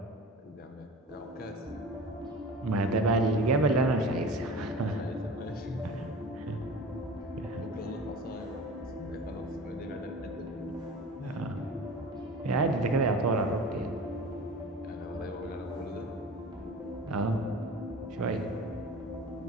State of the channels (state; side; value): normal; both; correlation 0.37